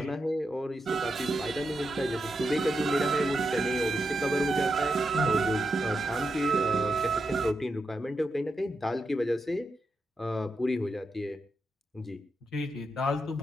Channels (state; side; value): normal; both; correlation 0.86